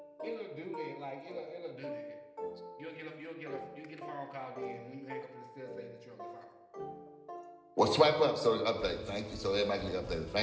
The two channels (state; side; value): identical; both; correlation 1.00